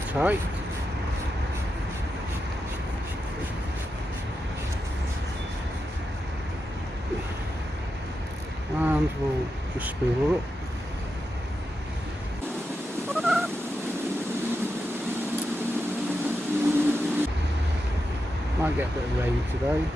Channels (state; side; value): normal; both; correlation 0.88